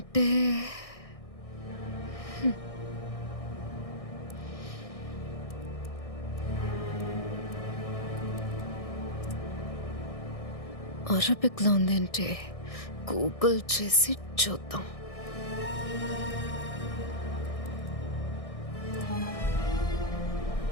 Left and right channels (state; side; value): late; right; 1.6 ms